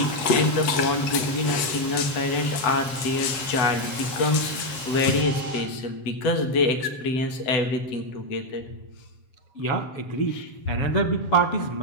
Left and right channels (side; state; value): right; late; 8.1 ms